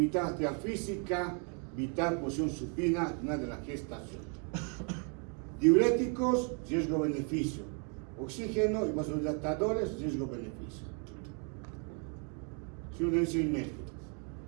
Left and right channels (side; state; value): left; quieter; 38.7 dB